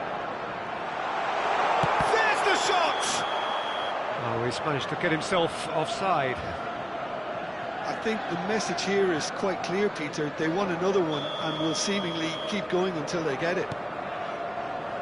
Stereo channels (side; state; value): both; identical; correlation 1.00